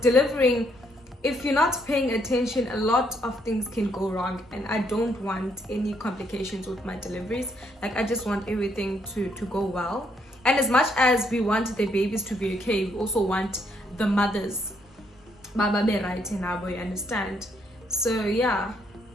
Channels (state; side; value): normal; both; correlation 0.72